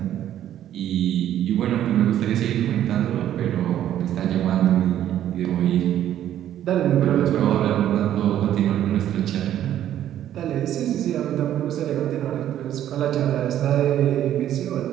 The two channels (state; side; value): quieter; left; 11.4 dB